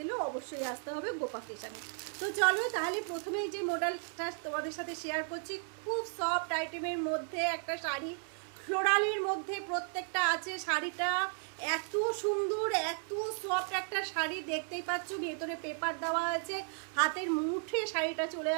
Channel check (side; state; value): left; silent; 55 dB below the other